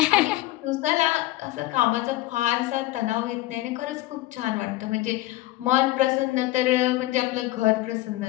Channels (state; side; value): quieter; right; 17.2 dB